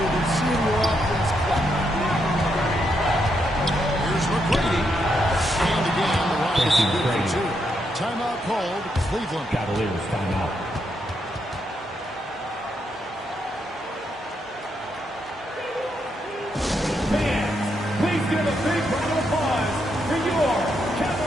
than seeing your offense clap. Here's McGrady. And again, the Rockets are good for 2. Timeout called. Cleveland. Cavaliers timeout. Fans, please give a big round of applause for your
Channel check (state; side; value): normal; both; correlation 0.79